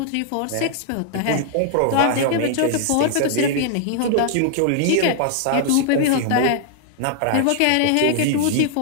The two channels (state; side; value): different; both; correlation -0.01